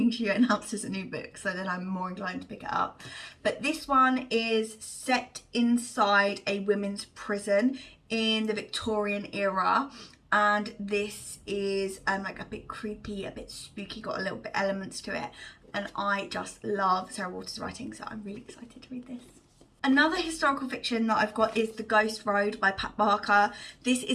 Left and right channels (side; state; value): both; identical; correlation 1.00